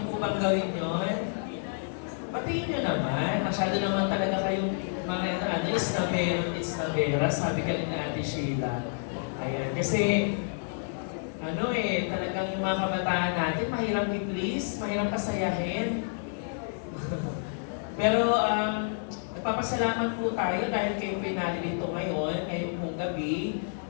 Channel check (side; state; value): right; silent; digital silence